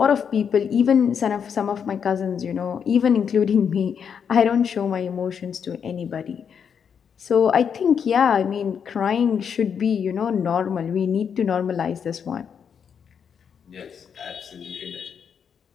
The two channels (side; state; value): right; quieter; 7.3 dB